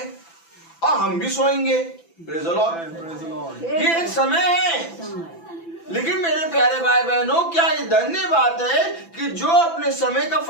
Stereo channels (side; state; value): right; late; 6.0 ms